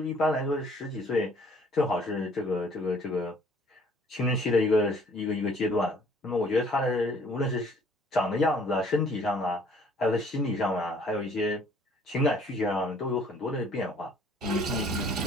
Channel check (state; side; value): normal; both; correlation 0.58